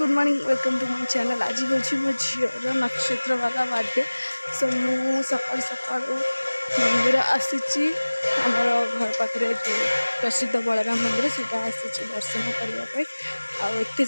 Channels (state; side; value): inverted; both; correlation -1.00